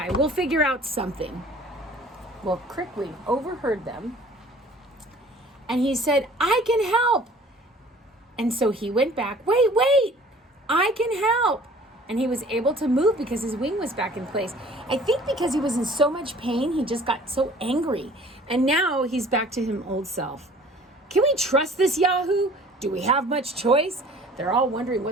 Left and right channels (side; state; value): both; normal; correlation 0.50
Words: We'll figure out something. Well, Crickwing overheard them, and he said, "I can help." And so he went back. Wait, I can help. And he was able to move because his wing was back in place. I think because he was in so much pain, he just got so angry. And now he's back to his old self. Can we trust this Yahoo? Do we have much choice? They're all wondering